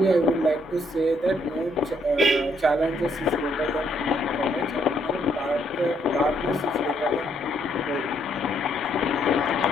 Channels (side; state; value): both; normal; correlation 0.72